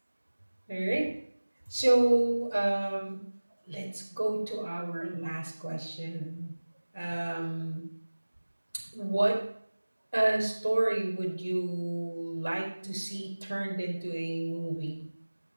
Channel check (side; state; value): both; inverted; correlation -1.00